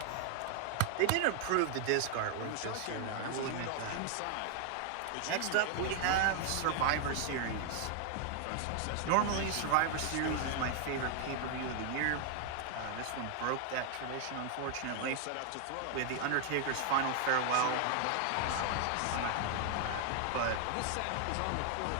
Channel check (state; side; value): different; both; correlation 0.00